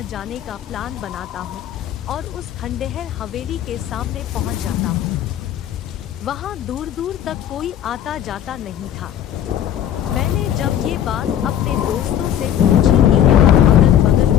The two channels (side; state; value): right; quieter; 10.3 dB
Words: जाने का प्लान बनाता हूं और उस खंडहर हवेली के सामने पहुंच जाता हूं। वहां दूर दूर तक कोई आता जाता नहीं था। मैंने जब ये बात अपने दोस्तों से पूछी कि यहाँ अगल बगल